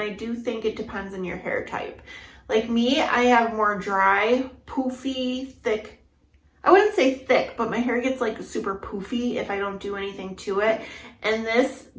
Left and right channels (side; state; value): both; identical; correlation 1.00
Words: do think it depends on your hair type. Like me, I have more dry, poofy, thick. I wouldn't say thick, but my hair gets like super poofy if I don't do anything to it. And this